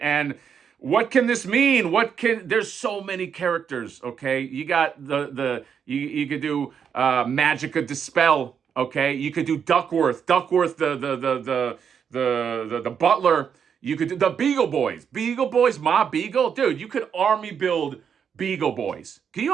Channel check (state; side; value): quieter; left; 7.4 dB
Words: And what can this mean? There's so many characters, okay? You got you could do Magica Dispel, okay? You could do Duckworth, the butler. You could do the Beagle Boys, Ma Beagle. Dude, you could army build Beagle Boys. Can you